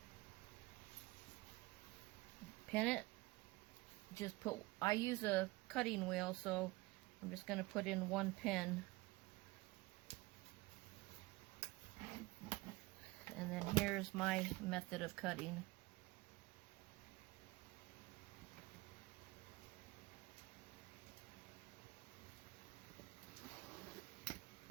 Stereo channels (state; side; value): quieter; left; 21.3 dB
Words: pin it. I use a cutting wheel, so I'm just going to put in 1 pin. And then here's my method of cutting.